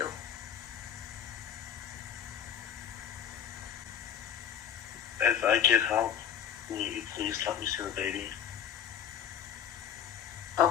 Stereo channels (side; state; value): right; quieter; 9.1 dB